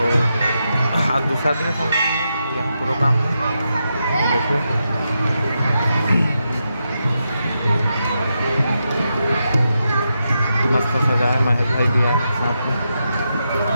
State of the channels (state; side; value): inverted; both; correlation -0.86